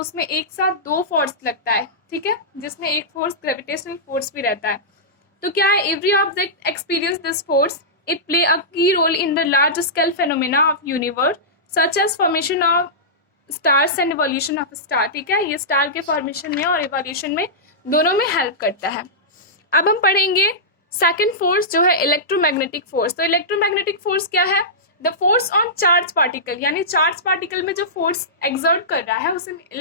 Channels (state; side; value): normal; both; correlation -0.15